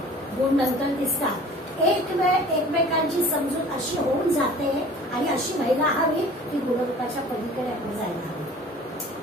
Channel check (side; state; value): both; normal; correlation 0.46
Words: गुण नंतर दिसतात. एक वेळ एकमेकांची समजूत अशी होऊन जाते आणि अशी व्हायला हवी की गुणरूपाच्या पलीकडे आपण जायला हवी.